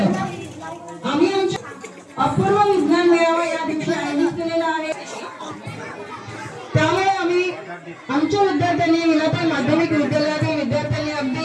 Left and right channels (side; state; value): both; identical; correlation 1.00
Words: आम्ही आमच्या अपूर्व विज्ञान मेळावा या दिवशी आयोजित केलेला आहे। त्यामुळे आम्ही आमच्या विद्यार्थ्यांनी विलाताई माध्यमिक विद्यालयातील विद्यार्थ्यांनी अगदी